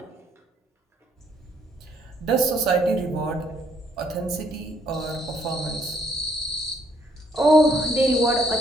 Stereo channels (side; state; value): both; normal; correlation 0.69